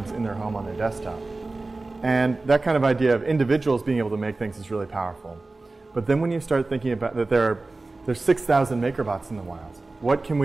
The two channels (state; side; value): quieter; left; 3.3 dB